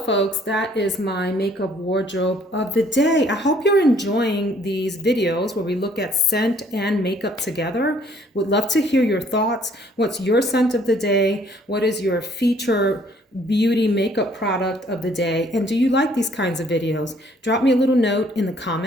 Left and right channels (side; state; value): both; normal; correlation 0.61